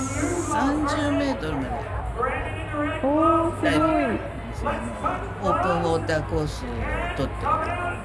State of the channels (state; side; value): identical; both; correlation 1.00